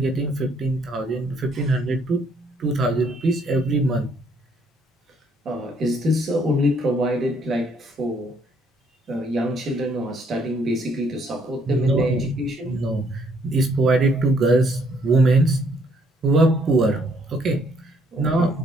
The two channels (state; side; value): normal; both; correlation 0.67